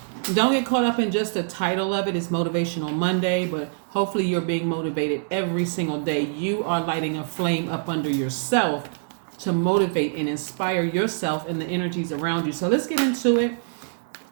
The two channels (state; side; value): silent; left; 62 dB below the other